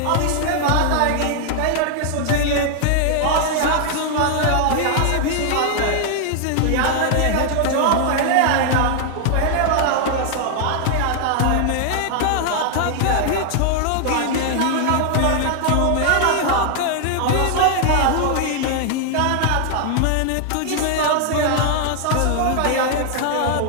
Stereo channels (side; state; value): both; different; correlation 0.00